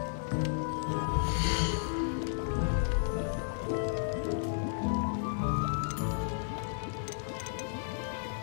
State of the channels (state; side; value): silent; right; digital silence